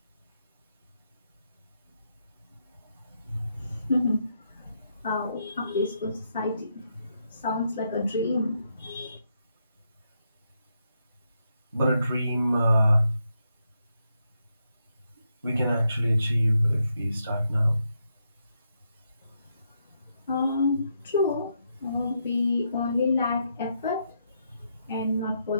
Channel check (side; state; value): both; inverted; correlation -0.80